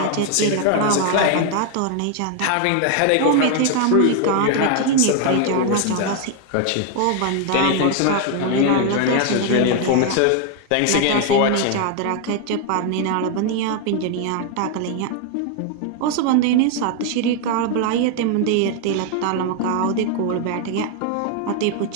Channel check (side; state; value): both; different; correlation 0.00